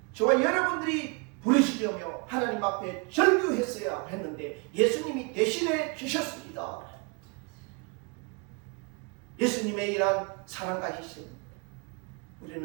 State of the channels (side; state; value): left; quieter; 32.2 dB